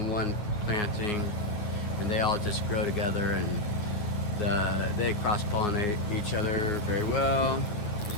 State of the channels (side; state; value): right; late; 9.6 ms